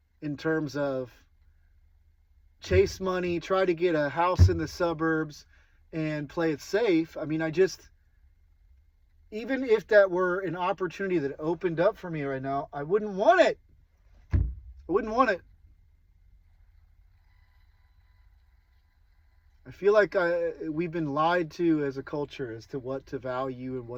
in terms of chase money, try to get a house in the suburbs, and play it safe. I mean, even if that were an opportunity that opened up for me right now, I wouldn't want it. I wouldn't want it. I feel like we've been lied to as a culture as to what to value and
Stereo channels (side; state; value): both; identical; correlation 1.00